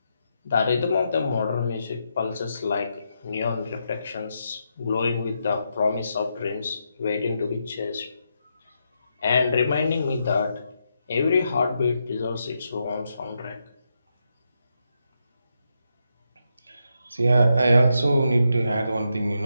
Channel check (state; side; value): inverted; both; correlation -0.82